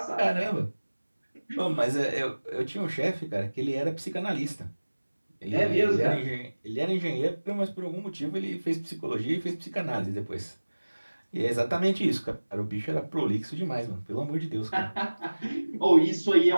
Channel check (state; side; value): inverted; both; correlation -1.00